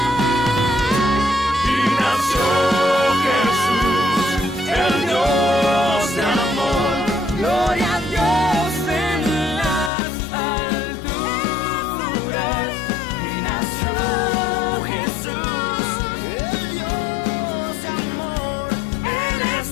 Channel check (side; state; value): right; drops out; at 9.9 s